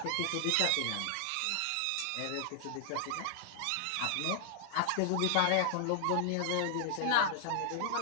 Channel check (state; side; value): different; both; correlation 0.00